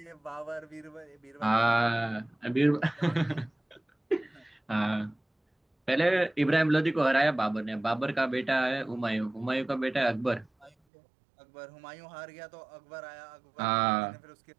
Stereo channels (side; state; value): left; drops out; at 10.7 s